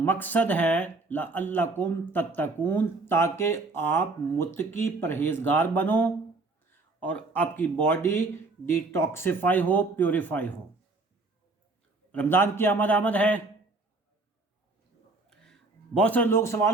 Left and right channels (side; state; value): left; quieter; 3.4 dB